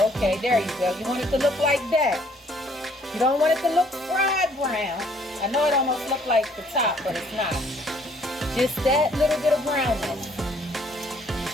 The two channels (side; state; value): both; normal; correlation 0.62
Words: Okay, there you go. You want it to look like that. You don't want it to look fried brown. I know it almost looks like the top, but it's not. Just that little bit of brownness.